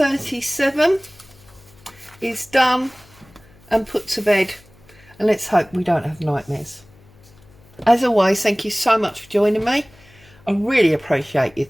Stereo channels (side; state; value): left; noise; hum, 27 dB below the sound